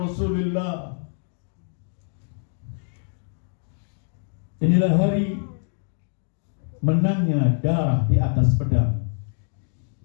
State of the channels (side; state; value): right; silent; digital silence